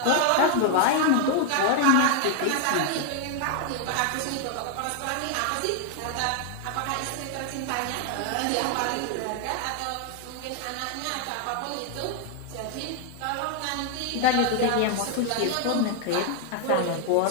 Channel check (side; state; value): both; different; correlation 0.00